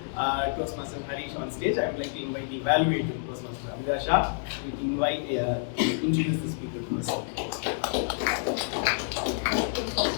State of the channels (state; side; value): silent; right; digital silence